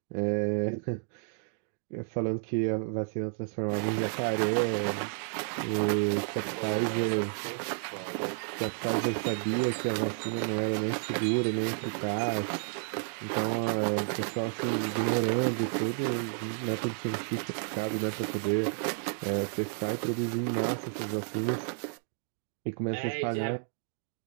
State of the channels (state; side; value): silent; left; digital silence